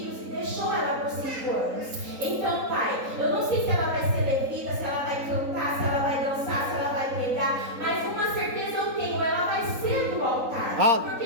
e deixou ela por 5 anos. Então, Pai, eu não sei se ela vai ser levita, se ela vai cantar, se ela vai dançar, se ela vai pregar, mas uma certeza eu tenho, ela vai ser do altar.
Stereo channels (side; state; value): left; late; 3.9 ms